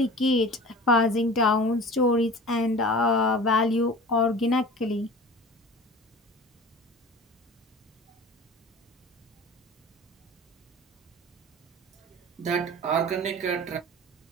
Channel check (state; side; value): normal; both; correlation 0.39